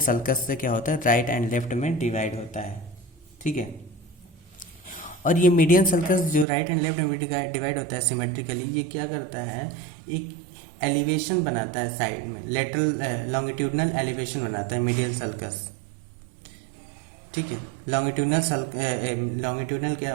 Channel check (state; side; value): drops out; left; at 6.5 s